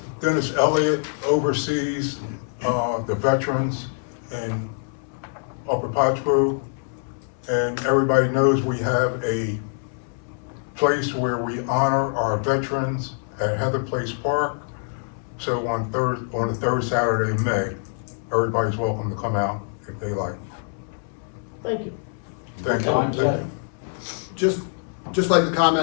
Dennis Elliott oversees the veterans in Upper Pottsboro. And everybody knows we have a place where we honor our veterans at Heather Place Park. So on the third Saturday in May, everybody's welcome to come out if they like. Thank you. Thank you. Just like to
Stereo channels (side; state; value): right; silent; 62 dB below the other